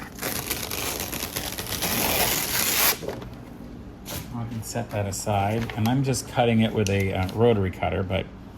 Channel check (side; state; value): both; identical; correlation 1.00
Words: I can set that aside, and I'm just cutting it with a rotary cutter, but